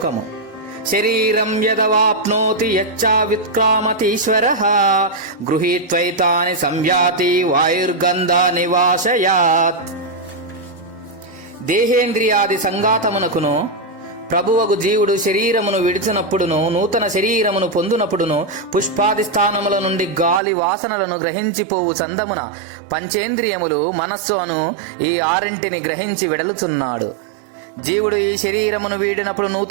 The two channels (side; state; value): left; drops out; at 20.4 s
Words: శరీరం యదవాప్నోతి యచ్చావిత్క్రామతీశ్వరః గృహీత్వైతాని సంయాతి వాయుర్గంధ నివాసయాత్. దేహేంద్రియాది సంఘాతమునకును ప్రభువగు జీవుడు శరీరమును విడిచినప్పుడును, నూతన శరీరమును పొందునప్పుడును, పుష్పాది స్థానముల నుండి గాలి వాసనలను గ్రహించిపోవు చందమున పంచేంద్రియములు మనస్సు అను ఈ ఆరింటిని గ్రహించి వెడలుచున్నాడు. జీవుడు ఈ శరీరమును వీడినప్పుడు,